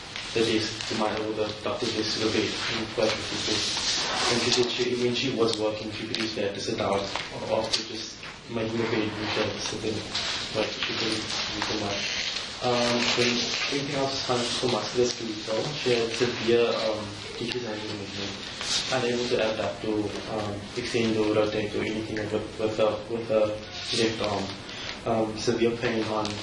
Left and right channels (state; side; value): identical; both; correlation 1.00